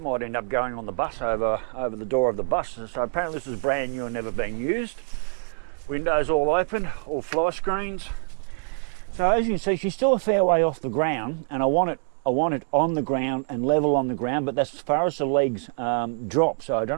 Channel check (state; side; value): silent; left; 59 dB below the other